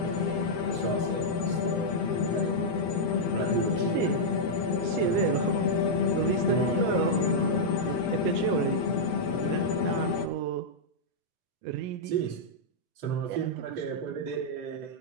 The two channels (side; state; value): both; normal; correlation -0.07